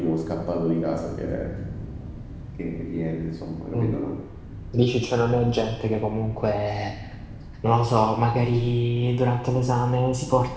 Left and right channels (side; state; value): both; identical; correlation 1.00